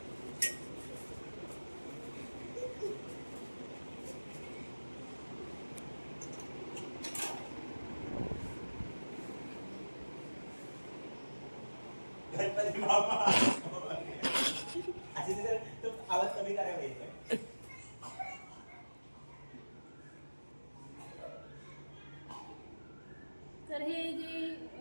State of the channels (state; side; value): inverted; both; correlation -1.00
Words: गणपती बाप्पा असे तर तो आवाज कमी करायला पाहिजे. तर हे जे